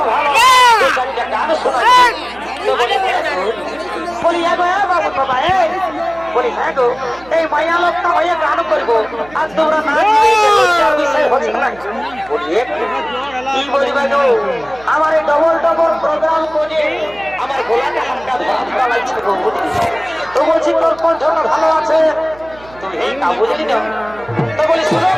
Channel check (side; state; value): right; noise; hum, 23 dB below the sound